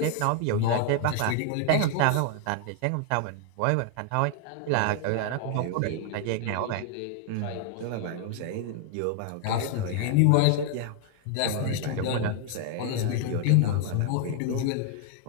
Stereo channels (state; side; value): different; both; correlation 0.00